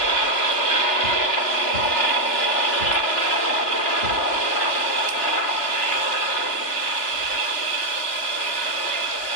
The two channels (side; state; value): right; late; 3.3 ms